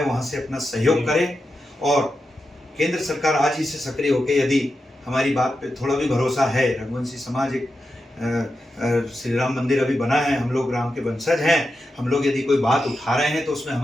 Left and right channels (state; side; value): normal; both; correlation 0.89